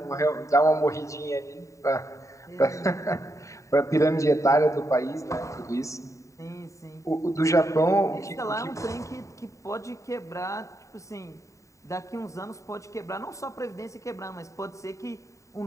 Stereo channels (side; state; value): right; late; 0.15 ms